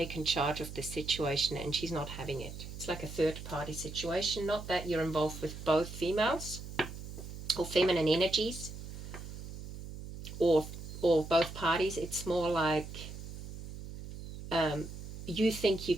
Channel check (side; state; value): right; noise; hum, 10 dB below the sound